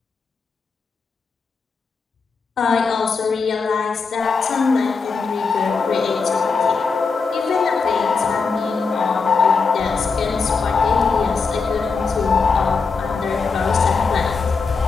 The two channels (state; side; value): quieter; right; 4.8 dB